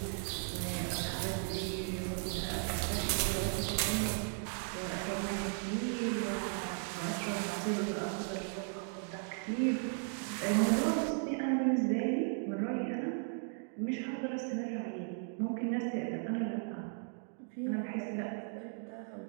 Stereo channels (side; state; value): left; silent; 54 dB below the other